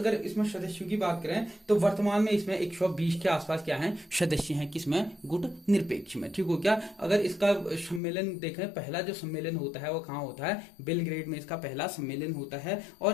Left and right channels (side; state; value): right; drops out; at 8.0 s